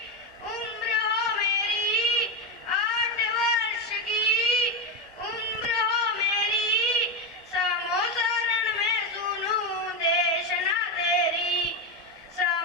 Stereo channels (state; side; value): normal; both; correlation 0.12